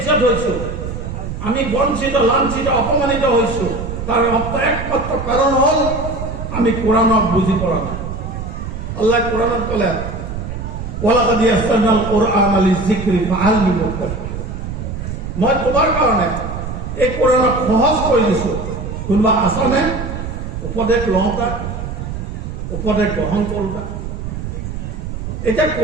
হয়েছো, আমি বঞ্চিত লাঞ্ছিত অপমানিত হয়েছো, তার একমাত্র কারণ হল আমি কোরআনক বুঝি পড়া না। আল্লাহ কোরআনত কলে ওয়ালাকাদ ইয়াসসারনাল কুরআনা লিযিকরি ফাহাল মিন মুদ্দাকির, মই তোমার কারণে এই কোরআনক সহজ করে দিছো, কোনোবা আছনে উপদেশ লওঁতা, উপদেশ গ্রহণ কৰোঁতা? এতিয়া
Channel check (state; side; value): noise; right; rumble, 6 dB below the sound